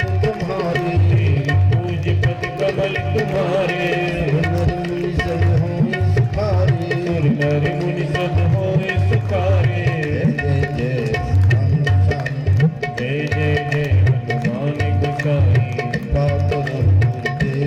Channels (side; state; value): both; identical; correlation 1.00